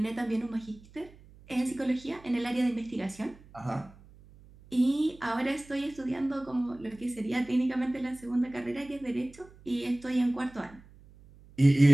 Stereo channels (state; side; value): noise; right; hum, 23 dB below the sound